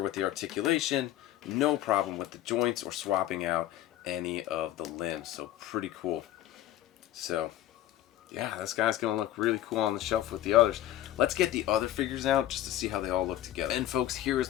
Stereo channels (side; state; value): right; quieter; 13.3 dB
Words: with the articulation, no problem with the joints or swapping out any of the limbs. So pretty cool. So yeah, this guy's gonna look really cool on the shelf with the others. Let's get the other figures out just to see how they all look together. And folks, here